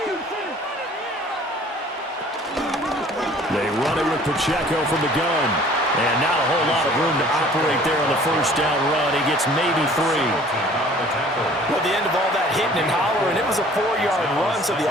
They run it with Pacheco from the gun. And not a whole lot of room to operate there on the first down run. He gets maybe 3. Well, the end of all that hitting and hollering, it was a 4-yard run, so the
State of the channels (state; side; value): normal; both; correlation 0.52